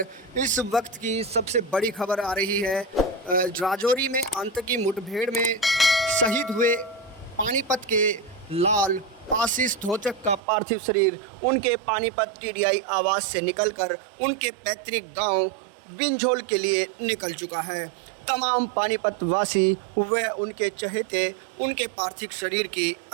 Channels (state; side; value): drops out; left; at 10.4 s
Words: इस वक्त की सबसे बड़ी खबर आ रही है। राजौरी में आतंकी मुठभेड़ में शहीद हुए पानीपत के लाल आशीष धोचक का पार्थिव शरीर उनके पानीपत टीडीआई आवास से निकलकर उनके पैतृक गांव बिंझोल के लिए निकल चुका है। तमाम पानीपत वासी व उनके चहेते उनके पार्थिव शरीर की